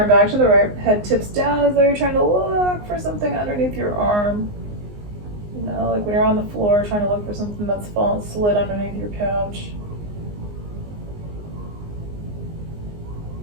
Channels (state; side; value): late; left; 19 ms